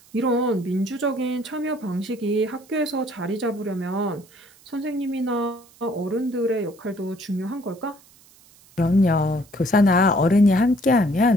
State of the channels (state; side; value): noise; right; hiss, 27 dB below the sound